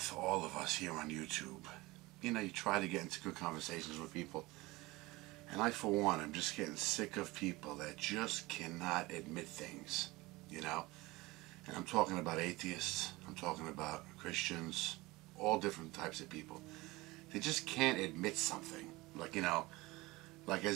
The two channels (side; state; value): left; quieter; 21.3 dB